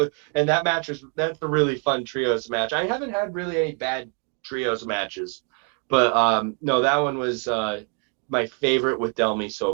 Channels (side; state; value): left; quieter; 38.5 dB